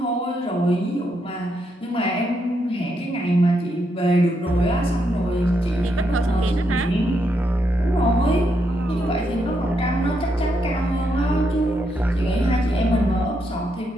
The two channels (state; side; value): normal; both; correlation 0.79